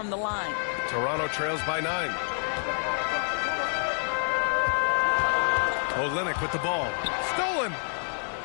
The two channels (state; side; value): silent; right; digital silence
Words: the line. Toronto trails by 9. Olenek with the ball. Stolen.